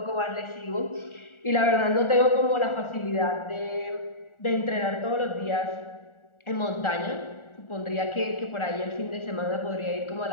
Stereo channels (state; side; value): late; right; 1.4 ms